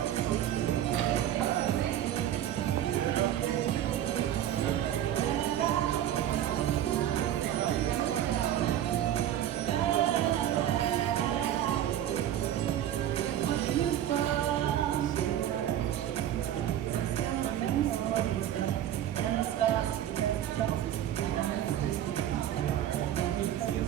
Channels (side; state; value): left; quieter; 11.4 dB